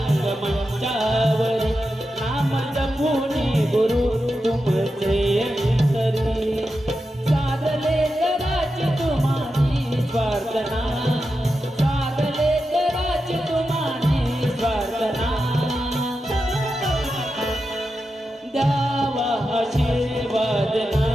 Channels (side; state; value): both; normal; correlation 0.89